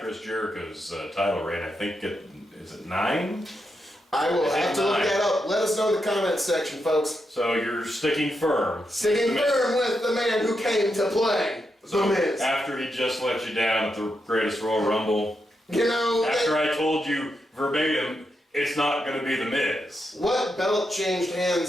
Jericho's title reign. I think is it 9? I will have to look that up. Let us know in the comments section, folks. So you're sticking firm. Sticking firm with the man who came to play The Miz. After he just let you down at the Greatest Royal Rumble. You know... After I told you verbatim, it's not going to be The Miz. What belt changed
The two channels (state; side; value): normal; both; correlation 0.84